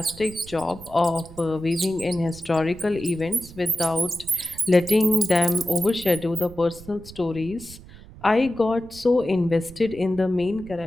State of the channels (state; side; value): noise; right; rumble, 18 dB below the sound